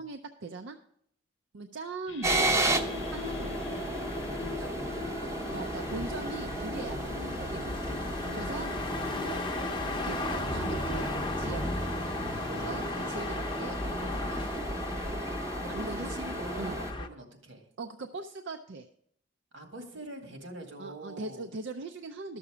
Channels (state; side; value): normal; both; correlation 0.30